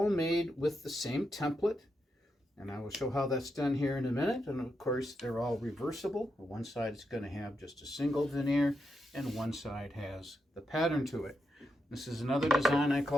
made with the same template, and I will show how that's done here in a minute. And of course, they're all reversible. One side is going to have just a single veneer, and one side has the pattern to it. This is another design I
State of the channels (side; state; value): both; normal; correlation 0.84